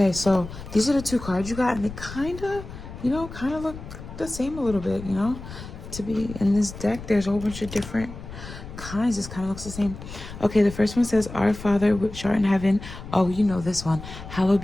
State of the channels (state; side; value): noise; left; rumble, 12 dB below the sound